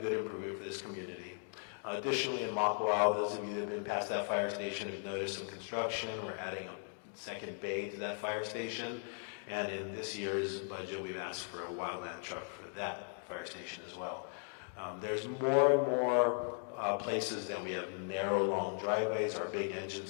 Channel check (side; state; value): right; silent; 53 dB below the other